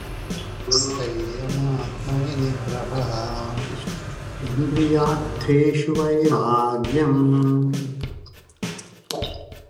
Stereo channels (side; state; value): both; identical; correlation 1.00